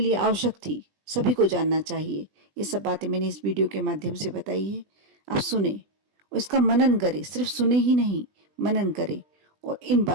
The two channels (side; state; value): left; late; 20 ms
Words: आवश्यक थी, सभी को जानना चाहिए, ये सब बातें मैंने इस वीडियो के माध्यम से बताई है। आप सुने और इसका मनन करें, सिर्फ सुने ही नहीं, मनन करें और इन